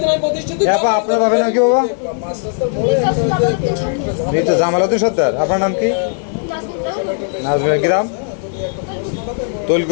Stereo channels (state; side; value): silent; right; digital silence